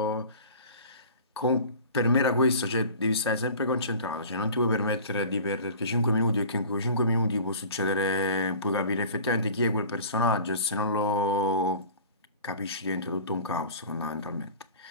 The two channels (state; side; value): inverted; both; correlation -0.42